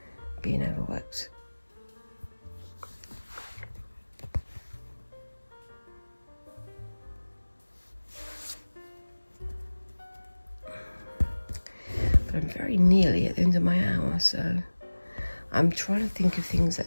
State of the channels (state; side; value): inverted; both; correlation -1.00